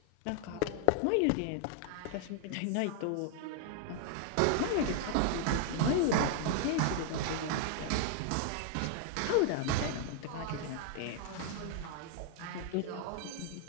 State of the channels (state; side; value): different; both; correlation 0.00